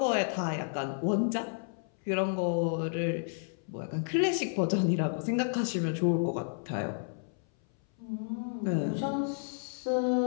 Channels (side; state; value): right; silent; 57 dB below the other